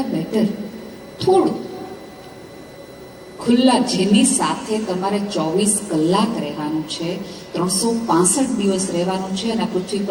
બેટર થોડું ખુલ્લા, જેની સાથે તમારે 24 કલાક રહેવાનું છે, 365 દિવસ રહેવાનું છે, અને પૃથ્વી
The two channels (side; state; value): both; identical; correlation 1.00